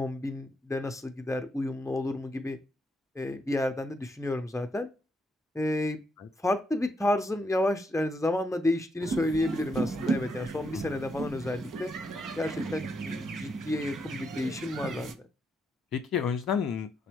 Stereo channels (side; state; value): both; normal; correlation 0.79